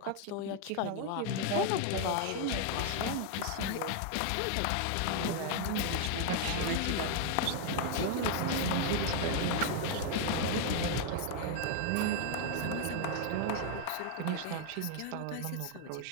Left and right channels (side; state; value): both; different; correlation 0.00